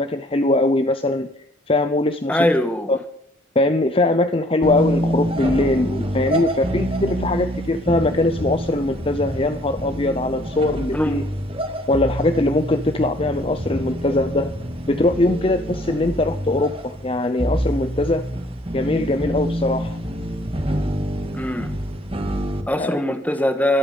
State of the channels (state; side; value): normal; both; correlation 0.60